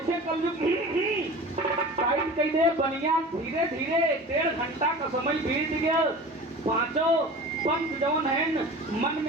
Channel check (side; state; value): both; normal; correlation 0.37